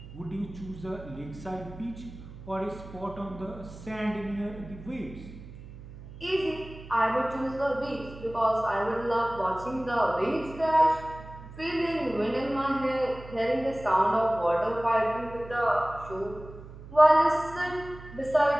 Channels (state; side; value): noise; right; hum, 15 dB below the sound